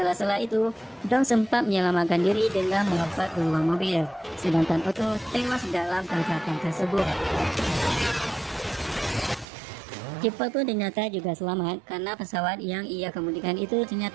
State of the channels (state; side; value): drops out; left; at 9.5 s